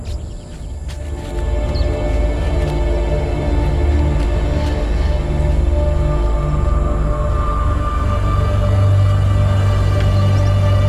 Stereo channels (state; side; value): identical; both; correlation 1.00